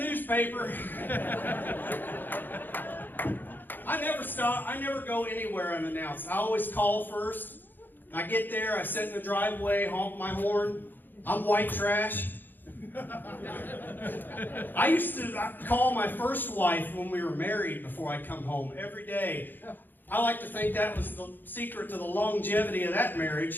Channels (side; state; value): right; late; 0.091 ms